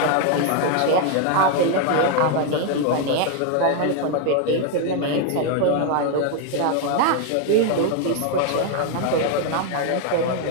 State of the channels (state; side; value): different; both; correlation 0.01